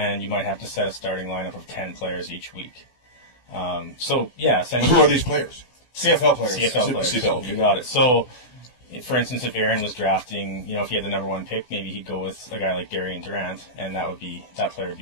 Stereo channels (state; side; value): late; right; 16 ms